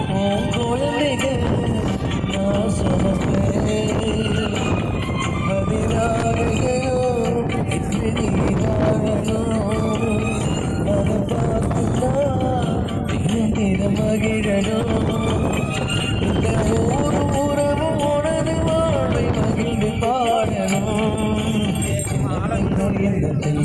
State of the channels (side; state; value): both; identical; correlation 1.00